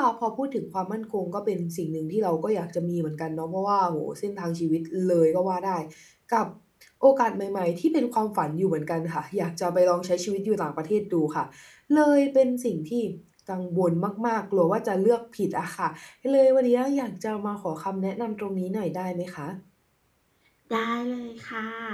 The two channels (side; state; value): both; identical; correlation 1.00